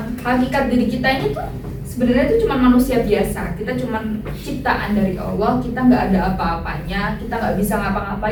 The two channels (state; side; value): identical; both; correlation 1.00